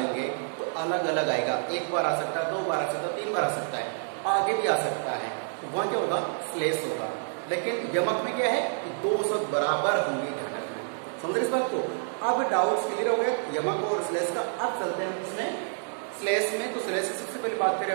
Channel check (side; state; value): left; silent; 59 dB below the other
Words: तो अलग अलग आएगा। एक बार आ सकता है, 2 बार आ सकता है, 3 बार आ सकता है, आगे भी आ सकता है, तो वहां क्या होगा, श्लेष होगा। लेकिन यमक में क्या है कि 2 शब्द बराबर होंगे ध्यान रखना। समझ रहे इस बात को? अब डाउट्स क्लियर हो गए यमक और श्लेष का। अब चलते हैं इसमें श्लेष में। तो श्लेष की सबसे पहले बात करें